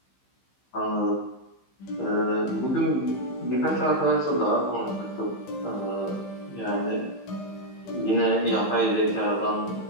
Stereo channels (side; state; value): right; late; 15 ms